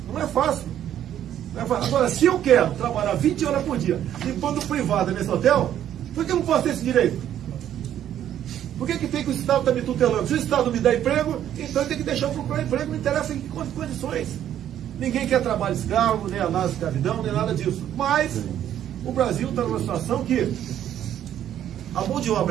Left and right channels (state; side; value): quieter; left; 10.8 dB